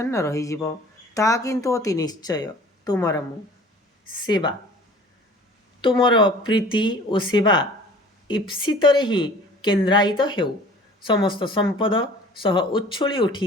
रही ता किंतु अति निश्चय तुमर मु सेवा तुमर प्रीति और सेवा ईप्सित ही केन्द्रायित हेउ समस्त संपद सह उच्छुली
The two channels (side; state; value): both; normal; correlation 0.47